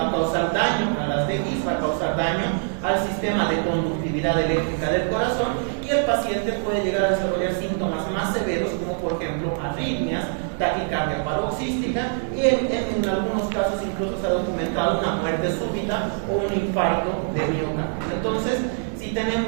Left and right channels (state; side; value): silent; left; 63 dB below the other